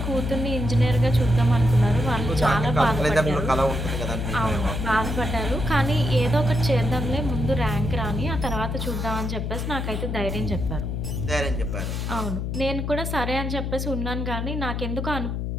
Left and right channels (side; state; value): left; noise; hum, 2 dB below the sound